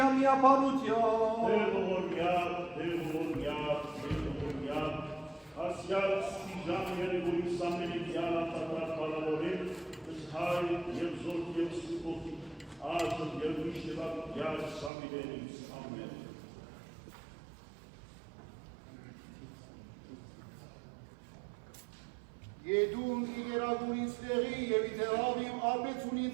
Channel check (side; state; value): left; drops out; at 14.9 s